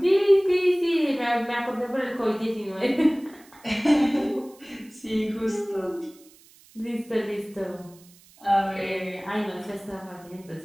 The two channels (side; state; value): right; noise; hiss, 26 dB below the sound